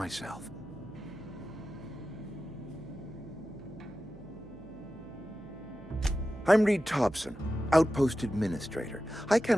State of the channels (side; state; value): right; noise; hum, 21 dB below the sound